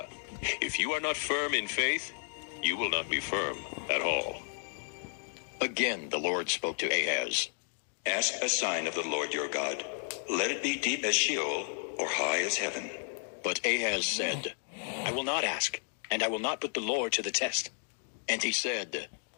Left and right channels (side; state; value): right; silent; digital silence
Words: If you are not firm in faith, you will not be firm at all. Again the Lord spoke to Ahaz, Ask a sign of the Lord your God. Let it be deep as Sheol, or high as heaven. But Ahaz said, I will not ask, and I will not put the Lord to the test. And he said,